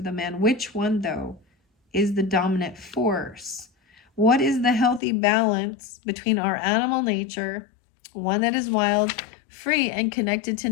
the man. Which one, though, is the dominant force? What is the healthy balance between our animal nature, one that is wild, free, and connected to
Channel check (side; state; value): right; drops out; at 5.0 s